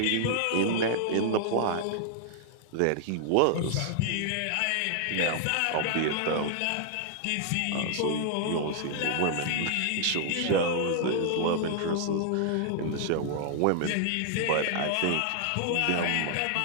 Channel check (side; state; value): both; different; correlation -0.01